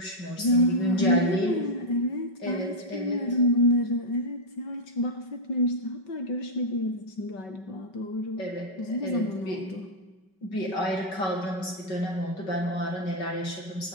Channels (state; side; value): late; right; 5.3 ms